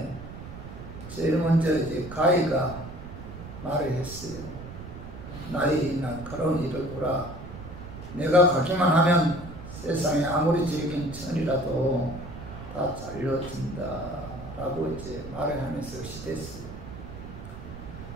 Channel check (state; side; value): noise; right; rumble, 12 dB below the sound